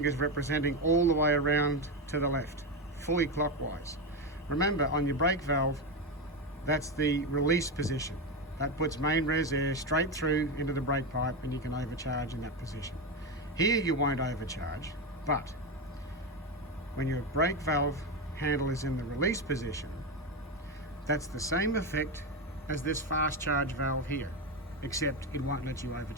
representing all the way around to the left, fully clockwise. Remember, on your brake valve, that's the release position. That puts main res air straight through into the brake pipe and you can overcharge in that position. Here you won't overcharge, but when your brake valve handle is in the release position, that's the same effect as this fast charge valve here, except it won't let you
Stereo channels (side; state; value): both; normal; correlation 0.13